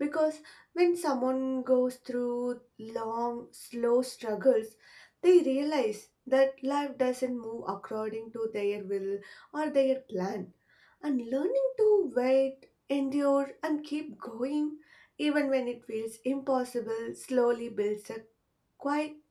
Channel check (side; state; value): both; identical; correlation 1.00